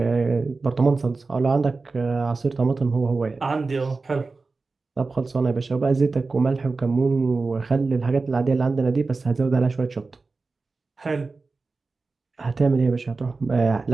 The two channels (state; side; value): quieter; left; 3.9 dB